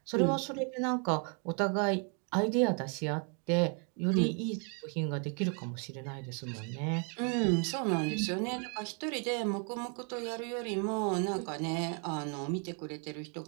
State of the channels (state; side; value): quieter; left; 38.9 dB